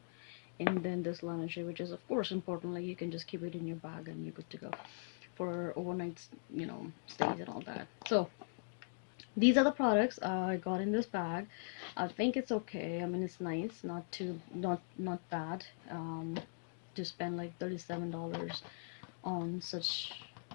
and then this lingerie, which is of course important. Like you can just keep it in your bag and you're good to go for overnight, stays and all that. So these are the products I got in this bag. I think it's okay. I mean, it's nice, not too, not bad. To spend like $37 on such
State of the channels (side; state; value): right; silent; digital silence